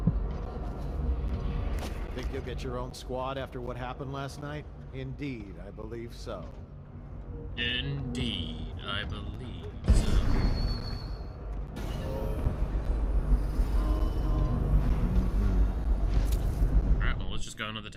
Think you'll get your own squad after what happened last night? Indeed, I believe so. indeed, I believe so. Alright, well, let's just go into the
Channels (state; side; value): identical; both; correlation 1.00